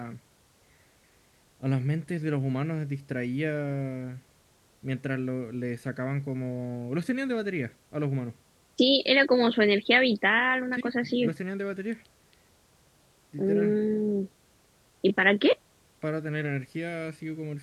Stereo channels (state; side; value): identical; both; correlation 1.00